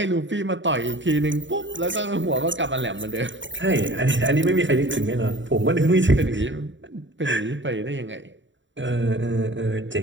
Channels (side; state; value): left; late; 0.54 ms